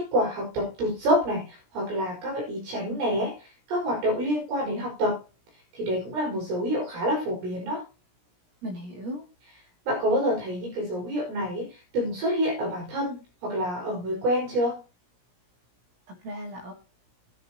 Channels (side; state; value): left; late; 17 ms